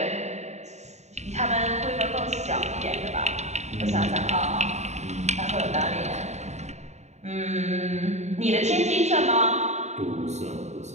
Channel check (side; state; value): left; late; 0.33 ms